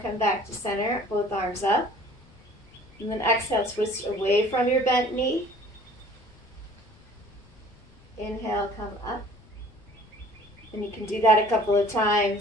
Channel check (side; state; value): left; noise; rumble, 26 dB below the sound